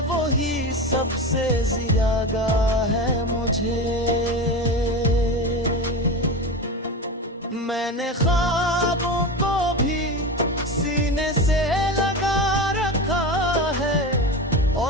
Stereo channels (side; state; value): both; normal; correlation 0.24